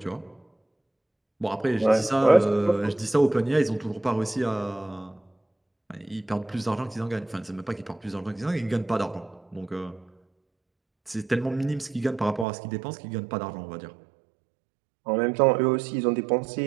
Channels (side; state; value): left; drops out; at 12.5 s